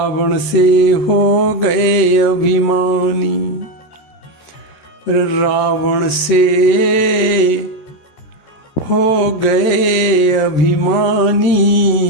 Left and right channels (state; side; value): late; right; 13 ms